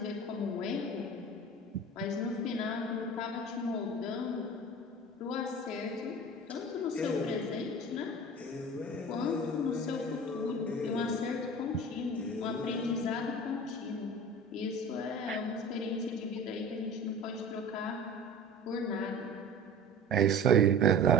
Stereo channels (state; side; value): normal; both; correlation 0.38